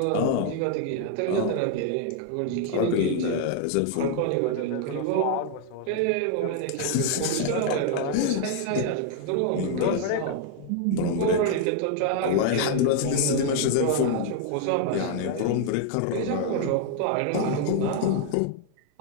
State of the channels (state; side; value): different; both; correlation 0.00